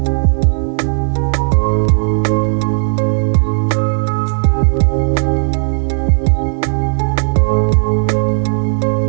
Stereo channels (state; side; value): silent; left; digital silence